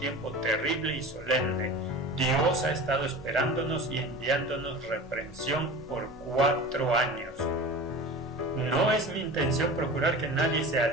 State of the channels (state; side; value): normal; both; correlation 0.35